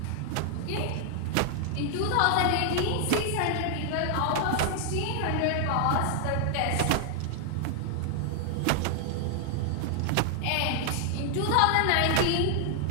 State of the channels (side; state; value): both; different; correlation 0.00